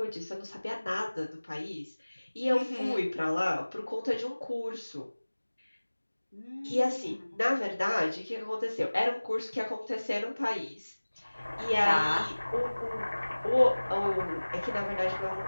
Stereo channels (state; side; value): inverted; both; correlation -1.00